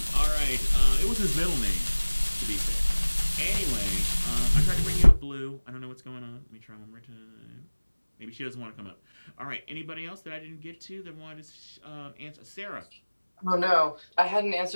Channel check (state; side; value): inverted; both; correlation -1.00